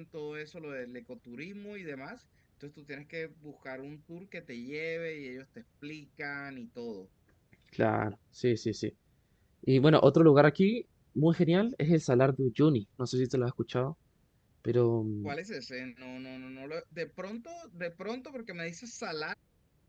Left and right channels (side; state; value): both; identical; correlation 1.00